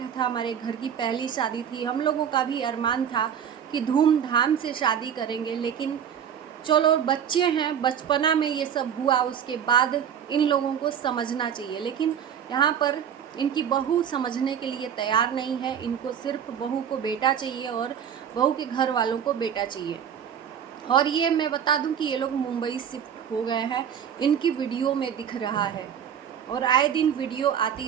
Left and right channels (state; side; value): quieter; left; 8.5 dB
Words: था, हमारे घर की पहली शादी थी, हम लोगों का भी अरमान था कि धूमधाम से शादी करेंगे, लेकिन चलो बच्चे हैं, बचपना में ये सब हुआ, उसके बाद इन लोगों को समझना चाहिए। लेकिन यहाँ पर इनकी बहू समझने के लिए तैयार नहीं है। इनको सिर्फ बहू को बेटा चाहिए और बहू के घर वालों को बेटा चाहिए। और ये मैं बता दूं कि ये लोग मुंबई शिफ्ट हो गए हैं, इनकी वीडियो में दिख रहा है और आए दिन वीडियो